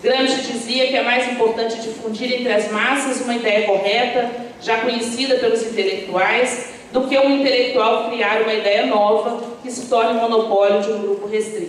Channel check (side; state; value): both; identical; correlation 1.00